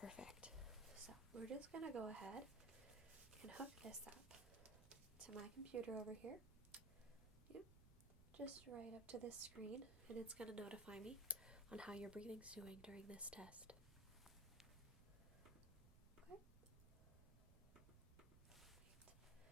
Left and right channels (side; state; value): right; noise; rumble, 16 dB below the sound